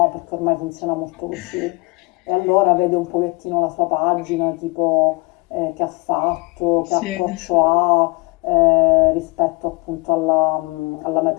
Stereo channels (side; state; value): right; quieter; 26.6 dB